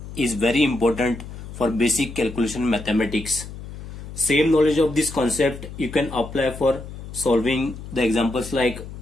is very important for basic calculation mathematics. Same knowledge of this concept you can apply for solving the examples like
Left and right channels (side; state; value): left; noise; hum, 12 dB below the sound